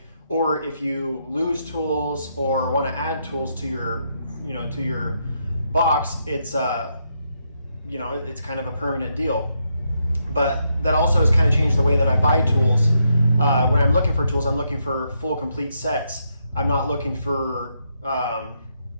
Or if you lose tools or want to add tools to your, to your box, it's it's kind of a permanent deal. But that also has kind of changed the way that I buy tools. When I'm looking for tools, I'm looking for full complete sets. I'm not looking for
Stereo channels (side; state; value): both; inverted; correlation -0.79